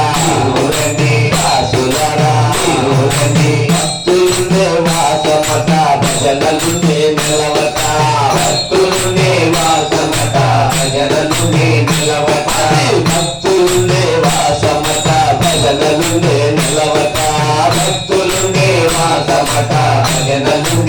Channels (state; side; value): identical; both; correlation 1.00